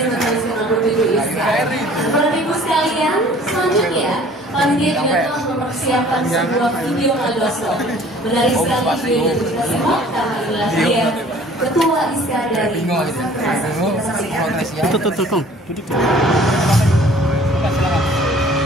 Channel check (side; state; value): both; normal; correlation 0.52